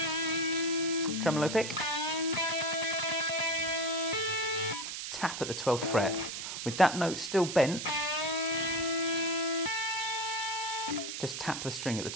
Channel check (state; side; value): noise; right; hiss, 5 dB below the sound